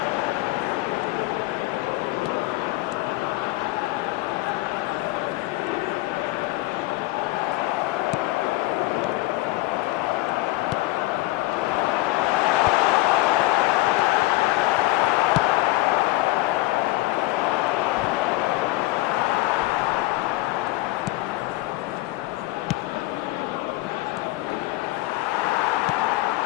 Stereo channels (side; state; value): right; quieter; 19.0 dB